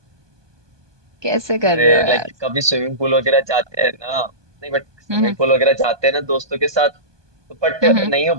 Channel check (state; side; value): late; left; 1.2 ms